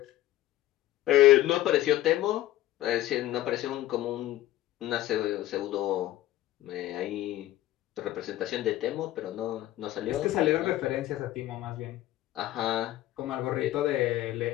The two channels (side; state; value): right; quieter; 14.8 dB